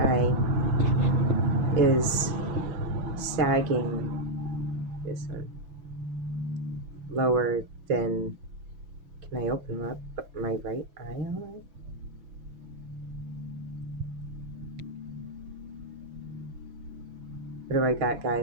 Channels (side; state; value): left; late; 7.1 ms